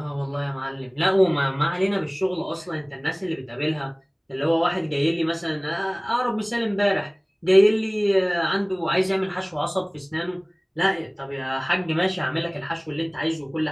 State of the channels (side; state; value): both; identical; correlation 1.00